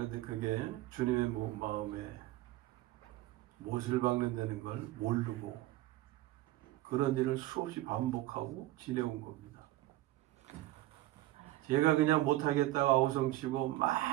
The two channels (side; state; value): left; quieter; 16.6 dB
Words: 그게 주님의 마음에 못을 박는다는 걸 모르고 그런 일을 수없이 반복하고 지내온 겁니다. 제가 그냥 못하겠다가 아우성치고